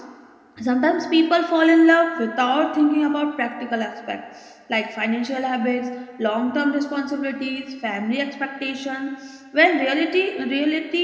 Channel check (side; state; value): both; identical; correlation 1.00